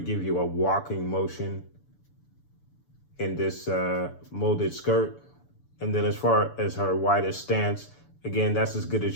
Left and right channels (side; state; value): right; late; 6.9 ms